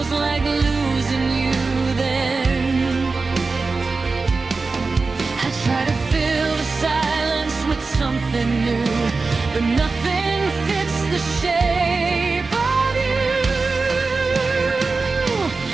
like losing you then. I try to fill the silence with something new, but nothing fits the shape of you.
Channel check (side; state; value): left; quieter; 4.0 dB